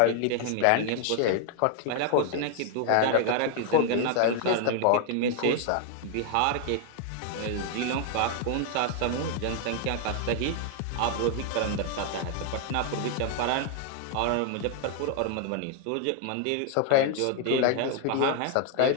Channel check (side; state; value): both; different; correlation 0.00